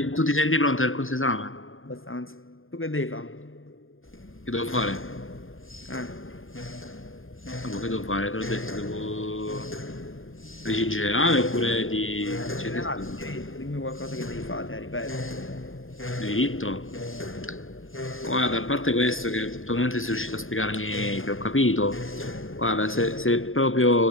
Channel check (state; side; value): late; right; 0.59 ms